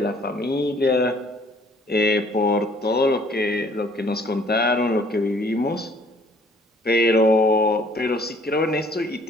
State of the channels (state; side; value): normal; both; correlation 0.58